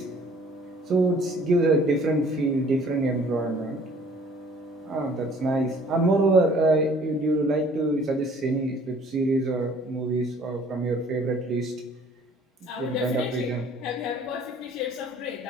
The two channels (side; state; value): both; normal; correlation 0.55